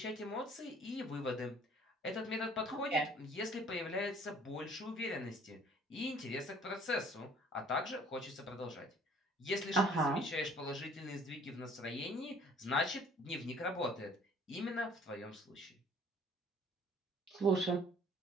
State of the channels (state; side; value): normal; both; correlation 0.55